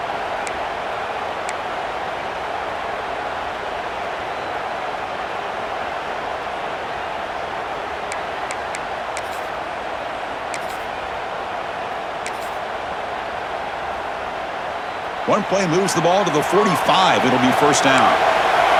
One play moves the ball to the 45. It'll be 1st down.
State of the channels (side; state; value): both; identical; correlation 1.00